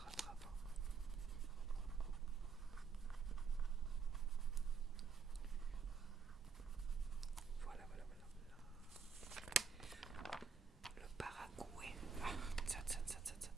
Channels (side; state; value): left; quieter; 5.4 dB